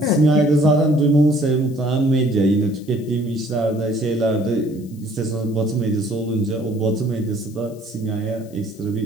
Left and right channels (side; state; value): left; noise; hiss, 27 dB below the sound